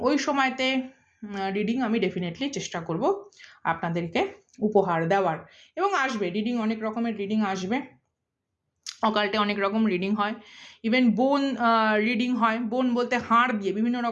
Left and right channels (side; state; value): both; identical; correlation 1.00